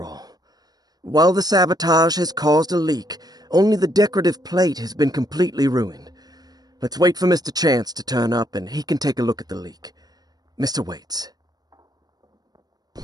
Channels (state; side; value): late; left; 0.19 ms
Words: all. While the sabotage has caused a leak, only the decorative plate has been completely ruined. Let's wait for Mr. Chance to turn up and he can take a look at the leak. Mr. Waits.